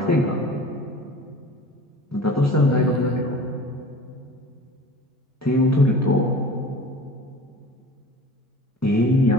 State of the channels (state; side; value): normal; both; correlation 0.41